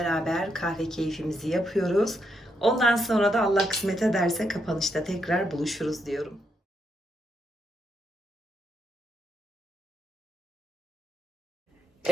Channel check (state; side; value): normal; both; correlation 0.79